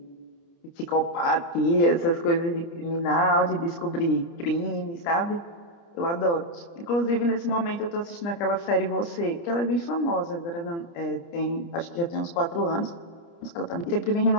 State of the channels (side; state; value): right; late; 29 ms